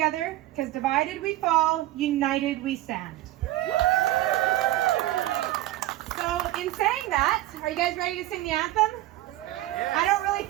because divided we fall, united we stand. So in saying that, are you guys ready to sing the anthem? Yes. I don't really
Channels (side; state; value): left; quieter; 15.6 dB